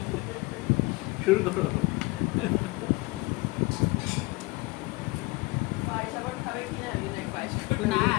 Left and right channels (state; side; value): quieter; right; 23.4 dB